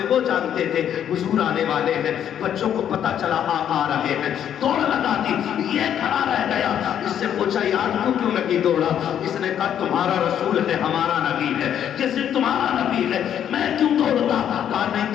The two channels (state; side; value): quieter; right; 9.7 dB